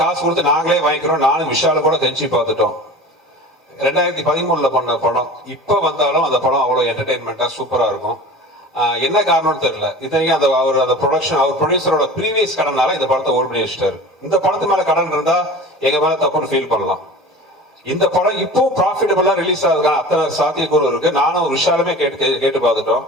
காசு கொடுத்து நாங்களே வாங்கிக்கிறோம். நானும் விஷால கூட கெஞ்சி பார்த்துட்டோம். 2013 பண்ண படம் இப்ப வந்தாலும் அந்த படம் அவ்வளவு என்டர்டைன்மெண்டா சூப்பரா இருக்கும். என்ன காரணம்னு தெரியல. இத்தனைக்கும் அந்த ப்ரொடக்ஷன், அவர் ப்ரொடியூசரோட ப்ரீவியஸ் கடனால இந்த படத்தை ஓட் பண்ணி வச்சுட்டாரு. இந்த படத்து மேல கடன் இருந்தா எங்க மேல தப்புன்னு ஃபீல் பண்ணலாம். இந்த படம் இப்போ ப்ராஃபிட்டபிளா ரிலீஸ் ஆகுதுக்கான அத்தனை சாத்தியக்கூறு இருக்கு. நானும் விஷாலுமே கேட்டு பார்த்துட்டோம்.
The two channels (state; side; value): normal; both; correlation 0.37